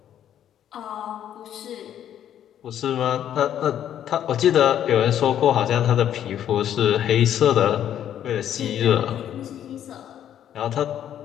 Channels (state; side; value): quieter; right; 10.4 dB